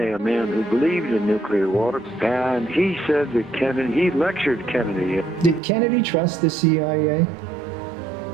a man who believed in nuclear war, and he said that he lectured Kennedy. Did Kennedy trust the CIA?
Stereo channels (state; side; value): drops out; left; at 5.6 s